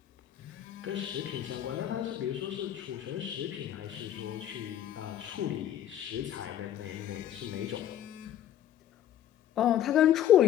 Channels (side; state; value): right; quieter; 11.2 dB